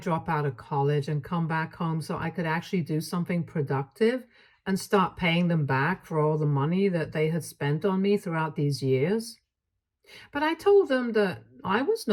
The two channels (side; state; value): both; identical; correlation 1.00